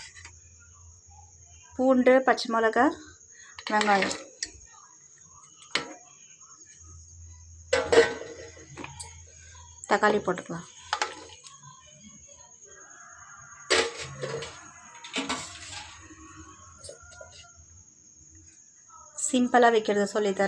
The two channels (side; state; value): both; identical; correlation 1.00